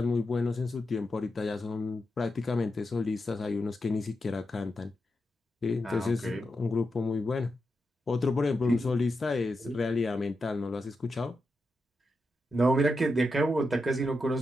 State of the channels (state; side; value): normal; both; correlation 0.87